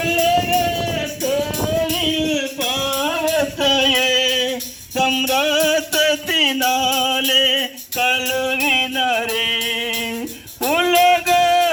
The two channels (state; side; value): identical; both; correlation 1.00